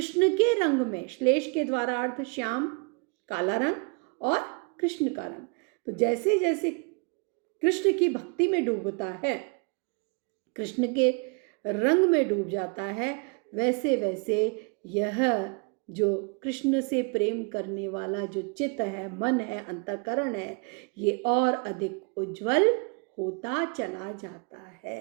के रंग में, श्लेष के द्वारा अर्थ श्याम काला रंग और कृष्ण का रंग, तो जैसे जैसे कृष्ण की भक्ति में डूबता है, कृष्ण के रंग में डूब जाता है, वैसे वैसे यह जो कृष्ण से प्रेम करने वाला जो चित्त है, मन है, अंतःकरण है, ये और अधिक उज्जवल होता चला जाता है।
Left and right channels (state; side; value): quieter; left; 34.2 dB